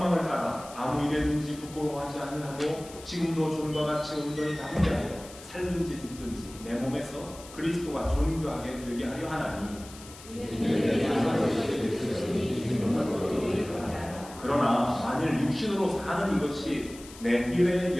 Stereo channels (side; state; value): left; noise; hiss, 18 dB below the sound